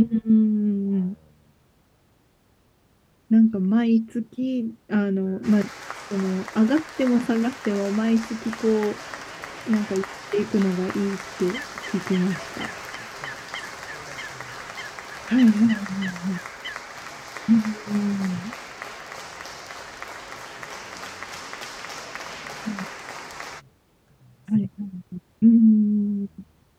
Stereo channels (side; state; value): both; identical; correlation 1.00